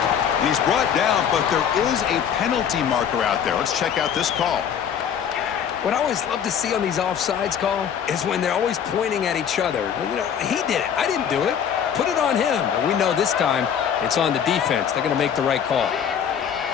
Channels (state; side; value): quieter; right; 8.2 dB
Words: And he's brought down, but there is a penalty marker out there. Let's check out this call. What I always love to see on these offsides call is when they're always pointing at each other. You know, he did it. I didn't do it. Put it on him. And we know this time it's on the defense. They're going to make the right call.